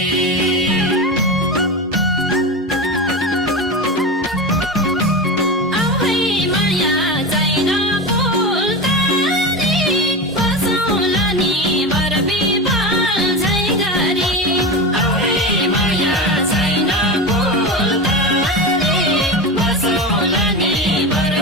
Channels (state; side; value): normal; both; correlation 0.22